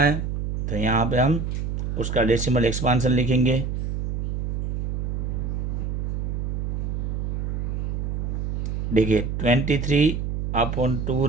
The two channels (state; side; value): noise; right; hum, 2 dB below the sound